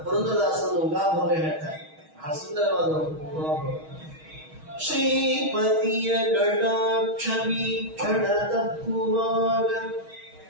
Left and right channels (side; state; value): left; late; 6.3 ms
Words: ಪುರಂದರದಾಸರು ಉಗಾಭೋಗ ಹೇಳ್ತಾರೆ, ಬಹಳ ಸುಂದರವಾದ ಉಗಾಭೋಗ. ಶ್ರೀಪತಿಯ ಕಟಾಕ್ಷ ವೀಕ್ಷಣ ತಪ್ಪುವಾಗ